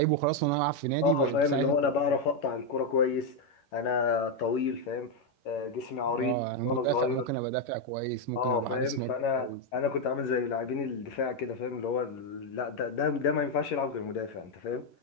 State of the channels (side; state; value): right; late; 11 ms